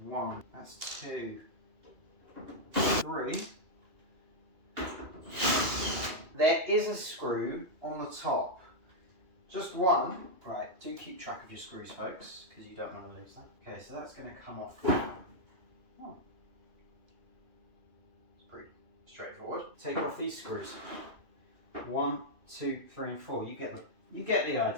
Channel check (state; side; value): late; left; 2.7 ms